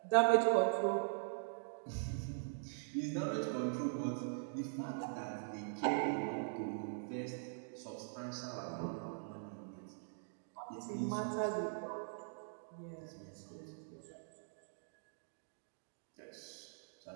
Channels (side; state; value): left; silent; digital silence